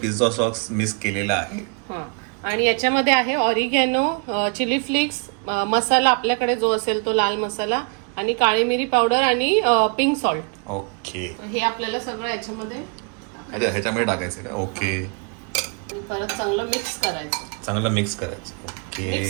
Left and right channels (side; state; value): left; quieter; 38.3 dB